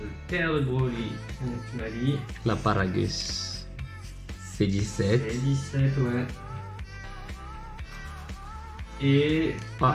Le père de Broly, tu m'as dit. La Paragus. C'est 17. C'est 17, ouais. Et.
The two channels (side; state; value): both; identical; correlation 1.00